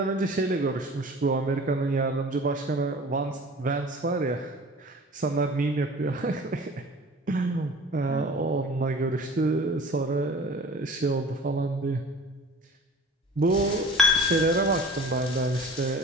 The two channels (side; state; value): both; normal; correlation 0.43